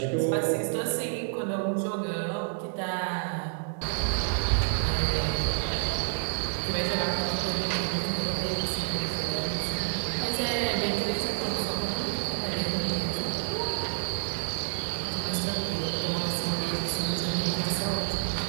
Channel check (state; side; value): silent; left; digital silence